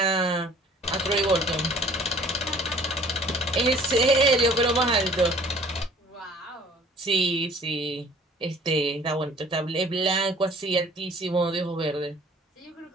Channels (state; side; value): normal; both; correlation 0.52